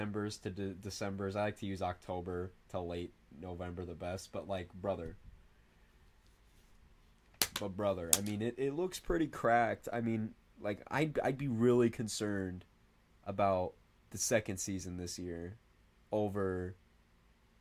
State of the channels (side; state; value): both; identical; correlation 1.00